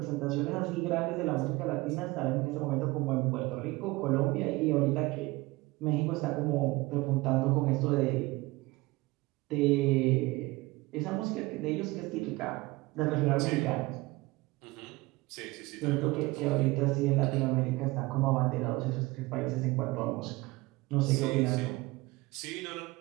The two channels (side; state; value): left; quieter; 21.6 dB